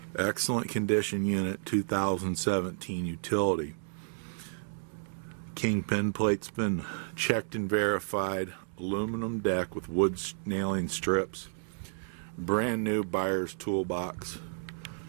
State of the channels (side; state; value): left; silent; 57 dB below the other